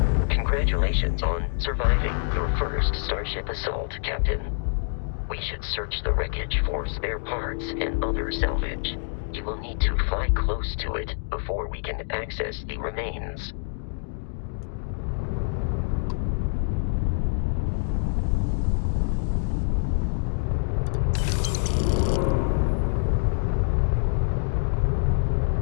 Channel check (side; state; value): right; silent; digital silence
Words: Congratulations on surviving your first Starship assault, Captain. We should search the wreckage for spare parts and other salvage. You will need to fly close to it before we can access the remains.